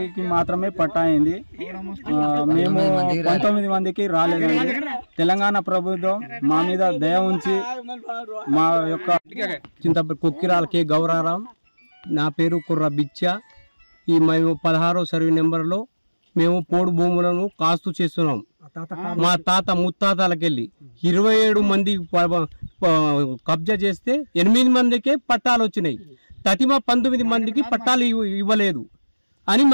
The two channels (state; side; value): inverted; both; correlation -1.00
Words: మాత్రమే పట్టా అయింది. మేము 19 మందికి రాలేదండి. తెలంగాణ ప్రభుత్వం మా మీద దయ ఉంచి మా యొక్క చింతపల్లి కొక్కిరాలకి గౌరారం, నా పేరు కుర్ర బిచ్చ. ఈ మేము 16వ సర్వే నెంబర్లో మేము పోడు భూములను కాస్తూ చేస్తున్నాం. మా తాత ముత్తాతలకెళ్ళి 27 మంది కబ్జా చేస్తే 8 మందికే పట్టాలు వచ్చినాయి. తతిమ 19 మందికి పట్టాలు ఇవ్వలేదు అని